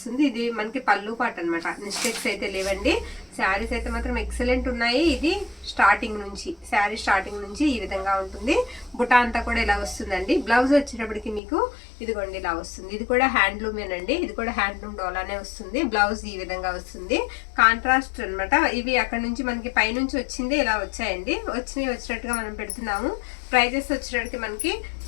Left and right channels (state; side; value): drops out; right; at 11.4 s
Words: ఇది మనకి పళ్ళు పాట అనమాట. మిస్టేక్స్ అయితే లేవండి. శారీస్ అయితే మాత్రం ఎక్సలెంట్ ఉన్నాయి. ఇది స్టార్టింగ్ నుంచి, శారీ స్టార్టింగ్ నుంచి ఈ విధంగా ఉంటుంది. బుటా అంతా కూడా ఇలా వస్తుందండి. బ్లౌజ్ వచ్చేటప్పటికి మీకు ఇదిగోండి ఇలా వస్తుంది. ఇది కూడా హ్యాండ్లూమేనండి. ఇది కూడా హ్యాండ్లూమ్ డోలానే వస్తుంది. బ్లౌజ్ ఈ విధంగా వస్తుంది. కాంట్రాస్ట్ అనమాట. ఇవి అక్కడ నుంచి మనకి పైనుంచి వచ్చింది ఇలా వచ్చాయండి. వచ్చినట్టుగా మనం పెడుతున్నాము. ప్రైజెస్ వచ్చేటప్పటికి మనకి